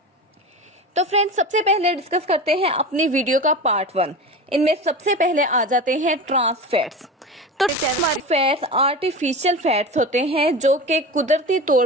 तो फ्रेंड्स, सबसे पहले डिस्कस करते हैं अपनी वीडियो का पार्ट 1। इनमें सबसे पहले आ जाते हैं ट्रांस फैट्स। तो फैट्स आर्टिफिशियल फैट्स होते हैं जो कि कुदरती तौर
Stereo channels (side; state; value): both; normal; correlation 0.28